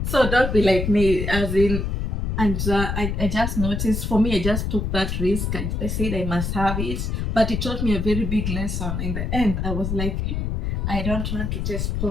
so don't be like me, as in, and I just noticed, for me, I just took that risk. I said I must have it, but it taught me a very big lesson. In the end, I was like, "Hey, I don't want to taste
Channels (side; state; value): left; noise; rumble, 1 dB below the sound